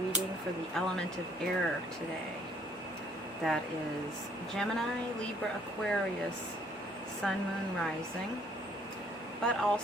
for the element of air today. That is Gemini, Libra, Aquarius, Sun, Moon, Rising, but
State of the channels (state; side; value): normal; both; correlation 0.64